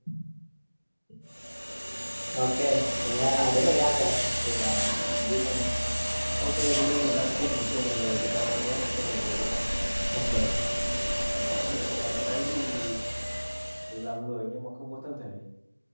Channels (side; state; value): both; inverted; correlation -1.00